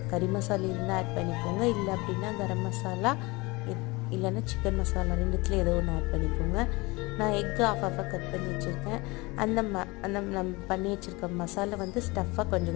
கறி மசாலா இருந்தால் ஆட் பண்ணிக்கோங்க, இல்லை அப்படின்னா கரம் மசாலா இல்லைன்னா சிக்கன் மசாலா ரெண்டுத்துல ஏதோ ஒன்று ஆட் பண்ணிக்கோங்க. நான் எக்கு ஆஃபாக கட் பண்ணி வச்சுருக்கேன். அந்த நம்ம பண்ணி வச்சுருக்க மசாலா வந்து ஸ்டஃப்பாக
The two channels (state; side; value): quieter; right; 24.2 dB